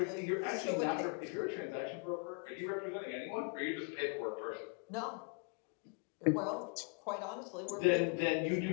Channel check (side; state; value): right; quieter; 35.8 dB